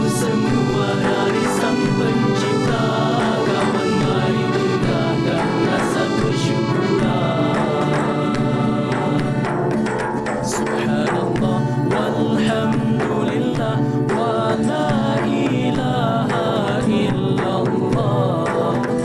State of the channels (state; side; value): identical; both; correlation 1.00